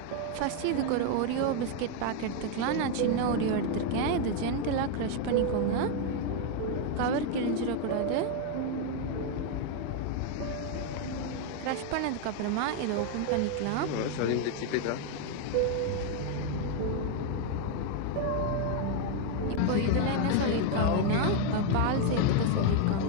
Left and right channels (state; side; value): different; both; correlation 0.01